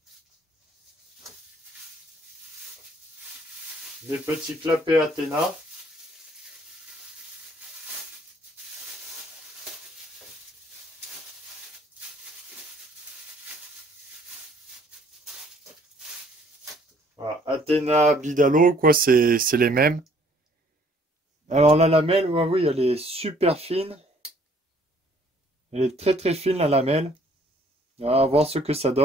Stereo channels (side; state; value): both; normal; correlation 0.60